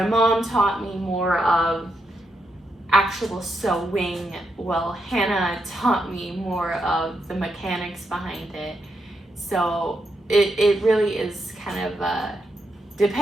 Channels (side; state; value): both; normal; correlation 0.82